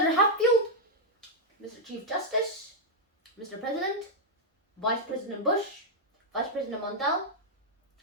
Hatfield, Mr. Chief Justice, Mr. President, Vice President Bush, Vice President Mondale,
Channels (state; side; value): normal; both; correlation -0.03